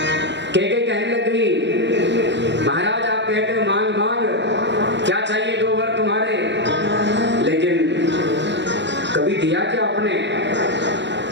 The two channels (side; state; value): left; late; 0.52 ms